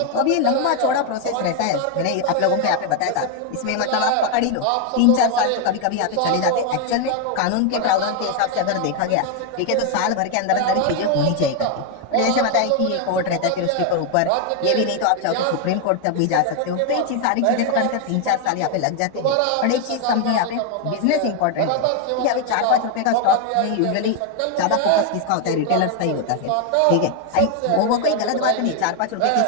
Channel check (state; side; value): different; both; correlation 0.00